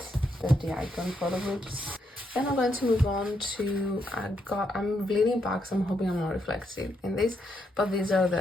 icon photo books. Then I'm going to move on to, I'm bleeding back, so I'm hoping I'm not reflective in this, but these are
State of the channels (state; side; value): normal; both; correlation 0.78